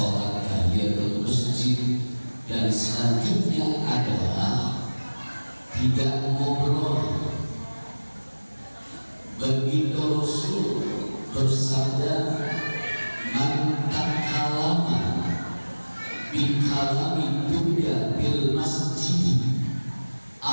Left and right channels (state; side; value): inverted; both; correlation -1.00